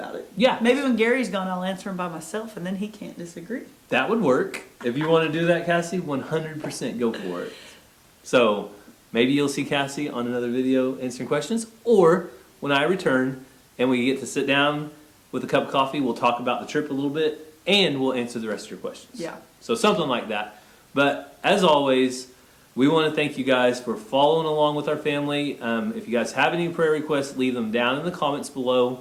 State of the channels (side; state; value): both; identical; correlation 1.00